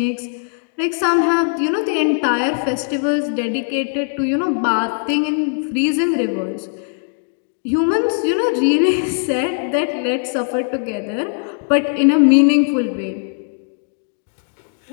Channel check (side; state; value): right; silent; 66 dB below the other